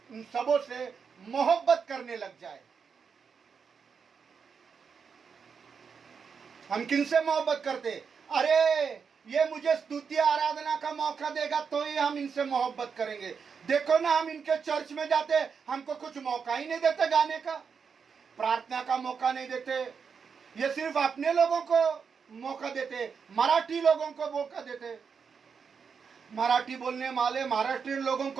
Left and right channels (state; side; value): quieter; left; 6.1 dB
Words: सबों से मोहब्बत करने लग जाए। हम किनसे मोहब्बत करते? अरे ये मुझे स्तुति आराधना का मौका देगा तो ही हम इनसे मोहब्बत करेंगे। देखो ना, हम इनके चर्च में जाते, हमको कुछ मौका ही नहीं देते गाने का, प्रार्थना का मौका नहीं देते। ये सिर्फ अपने लोगों को मौका देते, मराठी लोगों को मौका देते। मराठी बोलने वाले महाराष्ट्रीयन लोगों